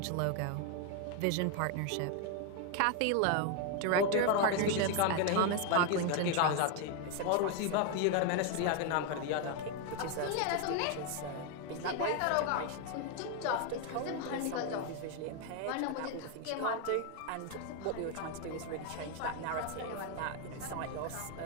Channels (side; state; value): both; different; correlation 0.01